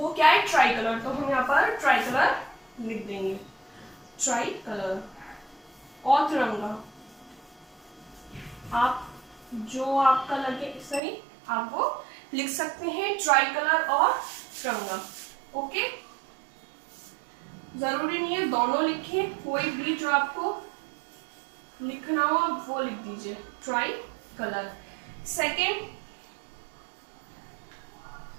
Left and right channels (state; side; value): drops out; left; at 11.0 s